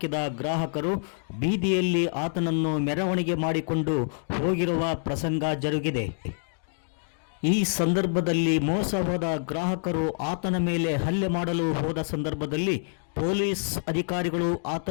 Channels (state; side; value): silent; right; digital silence